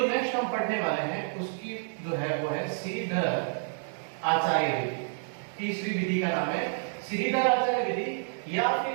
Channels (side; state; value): left; silent; digital silence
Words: नेक्स्ट हम पढ़ने वाले हैं उसकी जो है वो है श्रीधर आचार्य विधि। तीसरी विधि का नाम है श्रीधर आचार्य विधि, या फिर